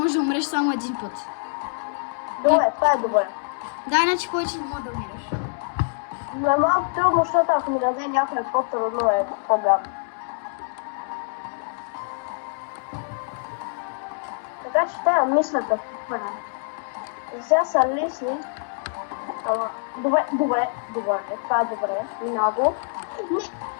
да умреш само един път. Добре, това е добре. Да, иначе повече не може да умираш. Но е малко трудно, защото ако ми даде някой по-трудно е по-гадно. Така че трябва да мисля какво правя. Сега са лесни. Добре, това е добре. Много.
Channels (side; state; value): right; silent; digital silence